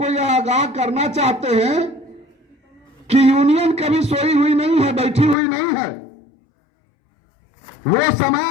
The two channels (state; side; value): drops out; right; at 5.4 s